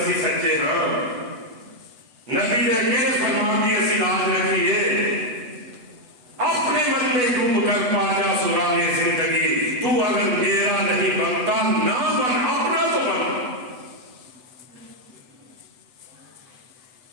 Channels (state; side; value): late; left; 8.1 ms